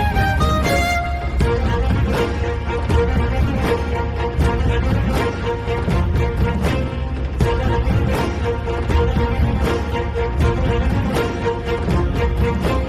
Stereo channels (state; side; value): identical; both; correlation 1.00